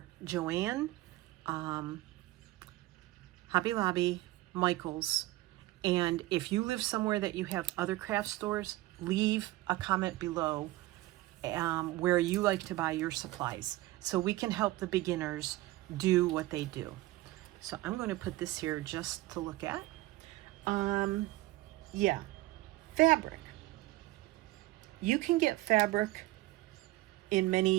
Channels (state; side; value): quieter; left; 18.0 dB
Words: Joann, Hobby Lobby, Michael's, And if you live somewhere that you have other craft stores, leave a comment below where you like to buy your supplies, so we can help the beginners do what they do. So I'm going to put this here just to look at. Yeah, fabric. You can get fabric in